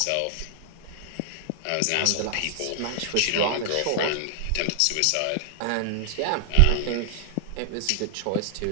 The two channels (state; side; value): different; both; correlation 0.00